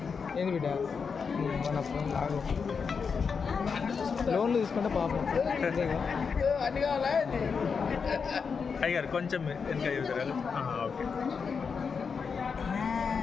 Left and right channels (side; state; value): right; quieter; 5.7 dB